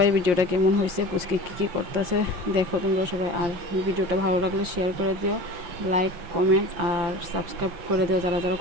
ভিডিওটা কেমন হয়েছে, পুচকে কী করতেছে দেখো তোমরা সবাই। আর ভিডিওটা ভালো লাগলে শেয়ার করে দিও, লাইক কমেন্ট আর সাবস্ক্রাইব করে দিও যারা যারা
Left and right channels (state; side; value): late; left; 5.8 ms